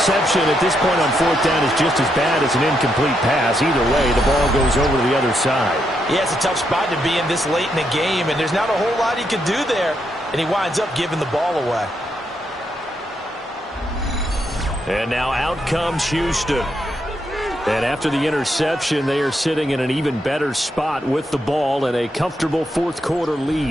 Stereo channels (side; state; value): both; normal; correlation 0.79